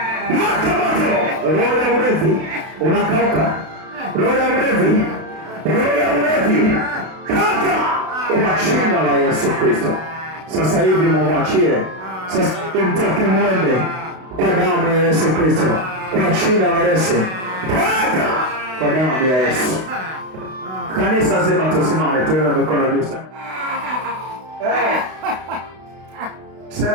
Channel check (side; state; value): left; late; 32 ms